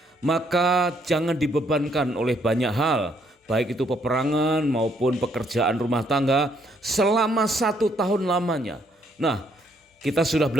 maka jangan dibebankan oleh banyak hal, baik itu peperangan maupun pekerjaan rumah tangga selama 1 tahun lamanya. Nah, kita sudah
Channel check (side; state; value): both; normal; correlation 0.70